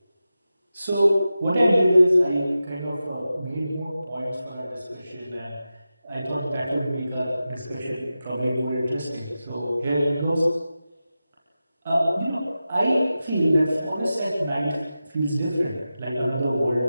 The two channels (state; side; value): inverted; both; correlation -0.93